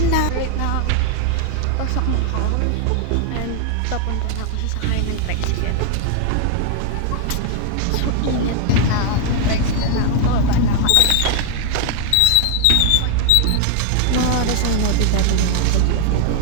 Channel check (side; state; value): both; different; correlation 0.00